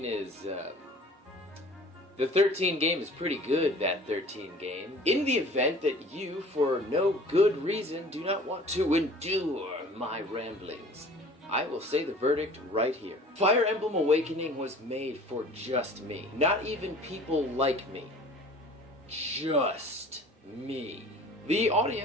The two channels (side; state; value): both; normal; correlation 0.47